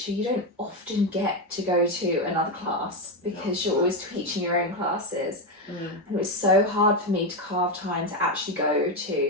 you don't often get to go to another class because you're always teaching your own classes. And it was so hard for me to carve time to actually go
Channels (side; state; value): both; normal; correlation 0.09